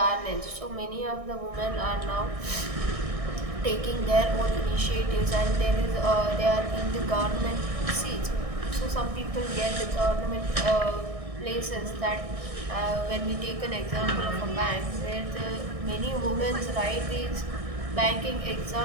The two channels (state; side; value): late; left; 1.6 ms